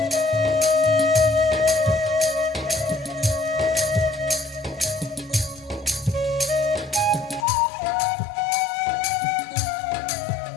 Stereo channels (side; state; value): right; drops out; at 7.5 s